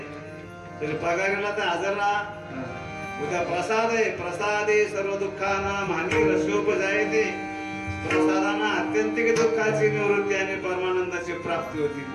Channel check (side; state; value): both; identical; correlation 1.00